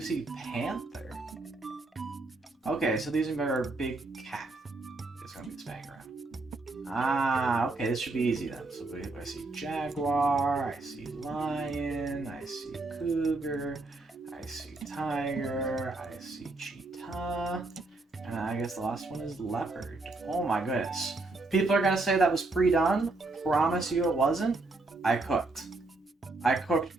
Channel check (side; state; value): left; quieter; 3.2 dB